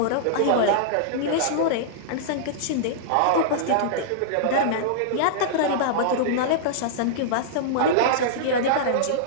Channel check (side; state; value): both; different; correlation -0.02